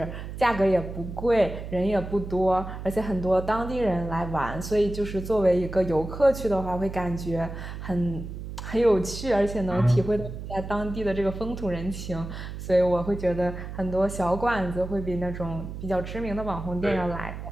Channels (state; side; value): noise; right; hum, 9 dB below the sound